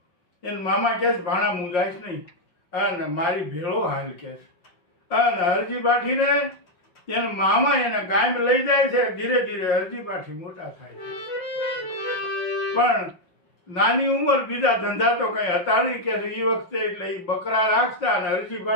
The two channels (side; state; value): right; late; 5.6 ms